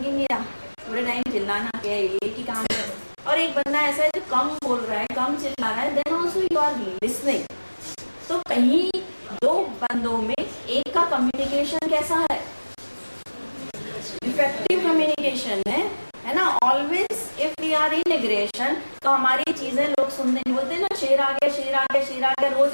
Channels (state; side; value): inverted; both; correlation -1.00